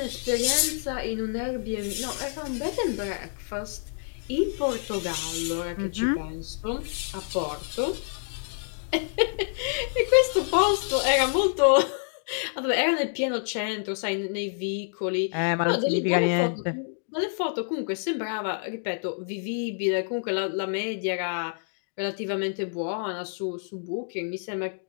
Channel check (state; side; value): silent; right; digital silence